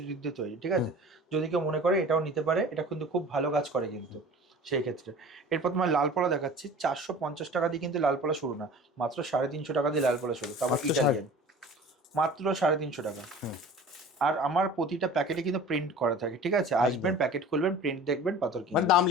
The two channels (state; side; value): normal; both; correlation 0.41